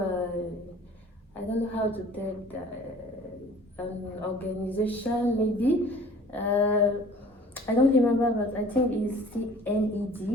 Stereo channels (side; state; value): both; normal; correlation 0.49